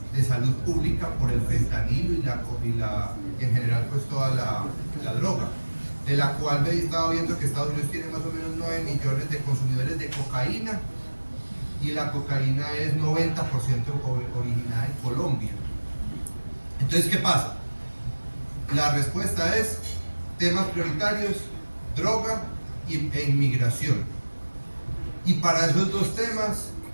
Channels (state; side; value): inverted; both; correlation -1.00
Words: de salud pública por el fentanilo y en general pues toda la droga, de la cual he estado viendo que Estados Unidos tiene más o menos 9 millones de consumidores de cocaína, y la cocaína es 90% originada en Colombia. Entonces, ¿qué pasa? La respuesta es temas prioritarios, droga e inmigración. Y para esos dos temas